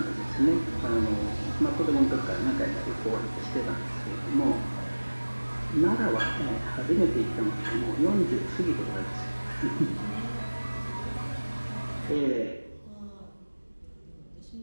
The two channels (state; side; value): inverted; both; correlation -1.00